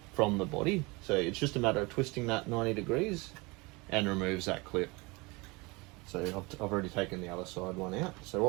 from the body. So it's just a matter of twisting that 90 degrees and removes that clip. So I've already taken the other side one out. So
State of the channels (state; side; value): quieter; left; 25.5 dB